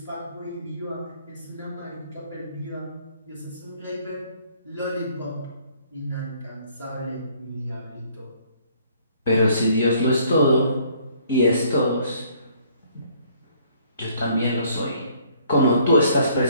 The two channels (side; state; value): both; inverted; correlation -0.62